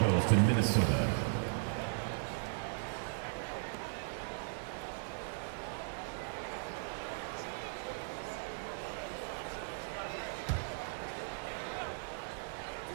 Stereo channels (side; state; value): left; silent; digital silence